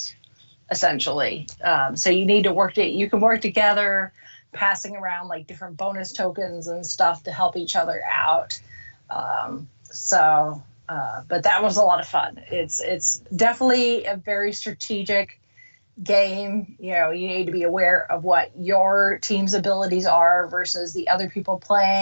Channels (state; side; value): inverted; both; correlation -1.00